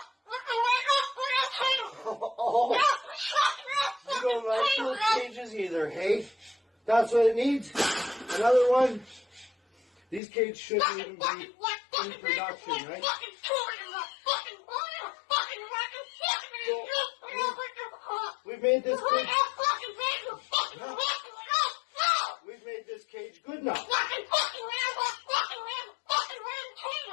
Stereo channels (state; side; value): drops out; right; at 10.2 s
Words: Oh, you don't like those cages either, hey? That's what it needs. Another one. These cages shouldn't even be in production, right? So, we've made this cage. We've made this cage good enough.